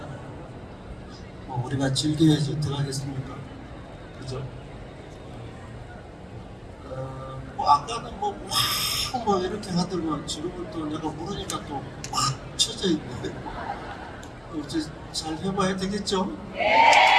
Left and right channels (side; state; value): both; identical; correlation 1.00